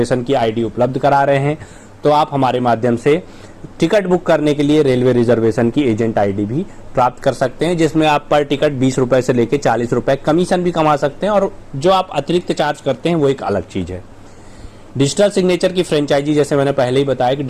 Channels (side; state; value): both; identical; correlation 1.00